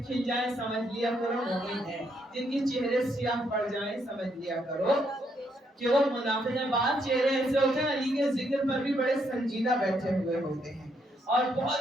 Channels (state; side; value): normal; both; correlation 0.75